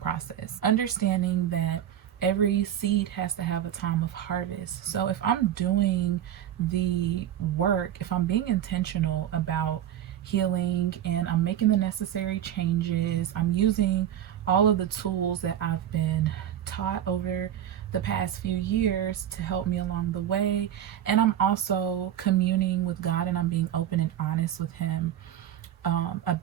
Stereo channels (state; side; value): quieter; left; 10.7 dB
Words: Understanding that every seed has to have a time of harvest. So if I'm doing the work, if I'm being intentional about healing and I'm making the necessary changes, I'm using all of the tools that I've been taught over the past few years to help me along the way, and I'm also communing with God, and I'm being open and honest with him